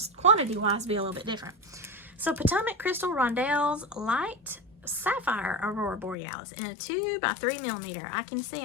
quantity-wise be a little bit different. So Potomac Crystal Rondelles Light Sapphire Aurora Borealis in a 2 by 3 millimeter. I can see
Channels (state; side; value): drops out; right; at 6.2 s